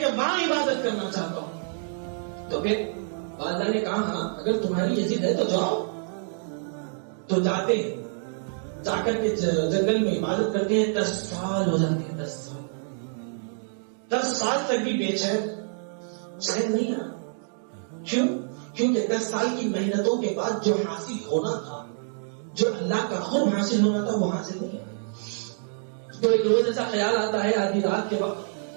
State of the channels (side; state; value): left; silent; digital silence